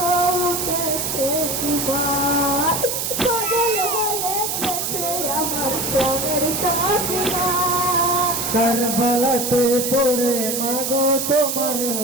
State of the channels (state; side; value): noise; right; hiss, 2 dB below the sound